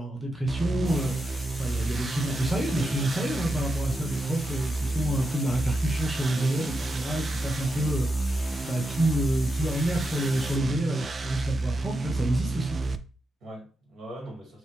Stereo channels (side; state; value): both; normal; correlation 0.87